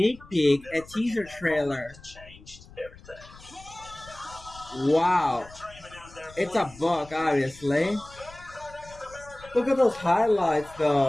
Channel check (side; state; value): left; noise; rumble, 20 dB below the sound